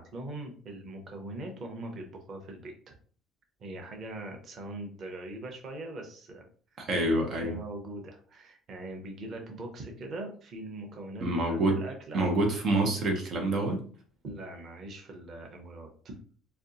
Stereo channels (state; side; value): normal; both; correlation 0.51